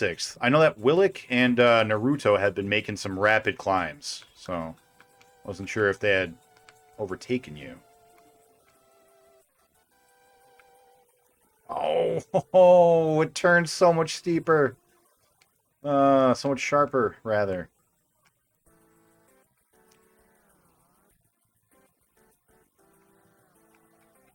I know that Willick and Naruto had been making some rapid climbs, so I wasn't sure if they had overtaken you. Oh, it turns so much steeper. So much sharper, rather.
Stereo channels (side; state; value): both; identical; correlation 1.00